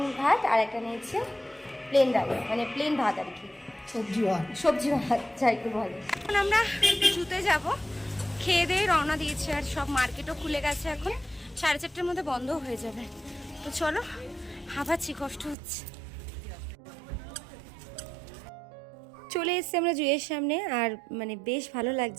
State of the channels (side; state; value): left; drops out; at 15.6 s